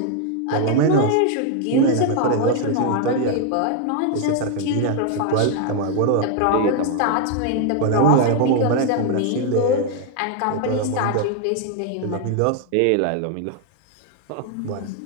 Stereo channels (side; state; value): both; different; correlation 0.00